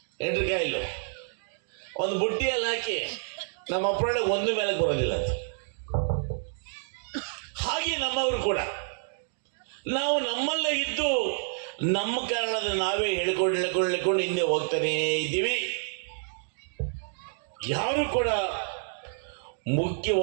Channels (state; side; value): silent; left; digital silence